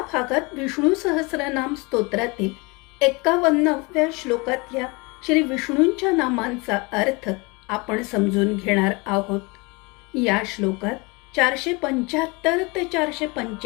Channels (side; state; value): right; quieter; 27.3 dB